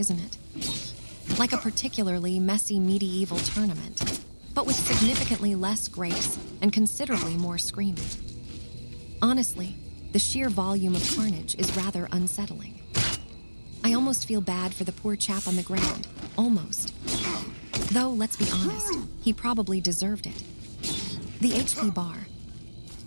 it? Like a particularly messy medieval tournament, but with significantly less grace and considerably more screaming. Honestly, the sheer volume of carnage is rather unsettling. I almost feel bad for the poor chap on the ground. Almost. Though, let's be honest, he probably deserved it. The HP bar.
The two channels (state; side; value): inverted; both; correlation -1.00